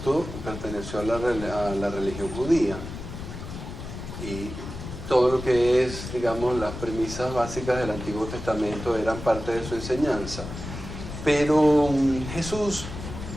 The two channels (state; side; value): noise; left; rumble, 9 dB below the sound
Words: perteneció a la religión judía y todo lo que es, digamos, las premisas básicas del Antiguo Testamento eran parte de su enseñanza. Pero Jesús,